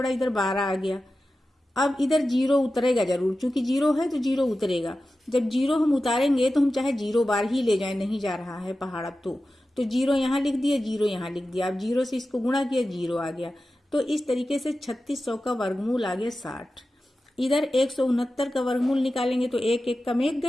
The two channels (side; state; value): both; normal; correlation 0.93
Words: इधर 12 आ गया। अब इधर 0 उतरेगा जरूर, क्योंकि 0 है तो 0 उतरेगा। जब 0 हम उतारेंगे तो हम चाहे 0 बार ही ले जाए, नहीं जा रहा है पहाड़ा तो 0 यहाँ लिख दिया, 0 यहाँ लिख दिया। अब 0 से इसको गुणा किया, 0 आ गया। तो इस तरीके से 3600 का वर्गमूल आ गया 60। इधर 169 का वर्गमूल निकालेंगे तो 1 1 का में